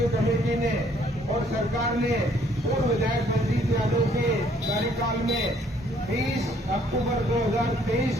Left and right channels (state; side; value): normal; both; correlation 0.64